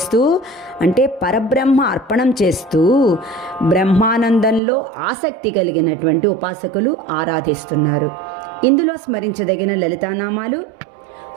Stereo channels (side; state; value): left; drops out; at 4.6 s